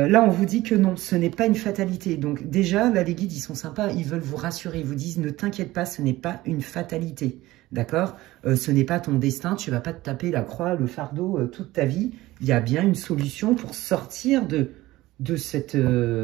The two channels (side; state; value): left; quieter; 17.7 dB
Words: on vous dit que non, ce n'est pas une fatalité. Donc déjà, là, les guides, ils sont sympas, ils veulent vous rassurer. Ils vous disent, ne t'inquiète pas, ce n'est pas une fatalité. D'accord? Ce n'est pas ton destin, tu ne vas pas te taper la croix, le fardeau toute ta vie. Il y a bien une solution pour sortir de cette